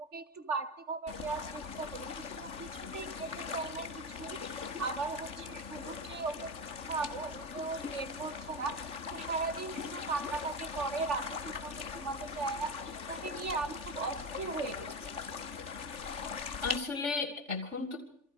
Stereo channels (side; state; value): left; late; 3.4 ms